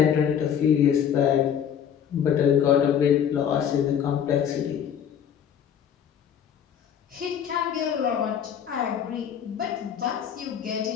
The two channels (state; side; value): quieter; right; 8.7 dB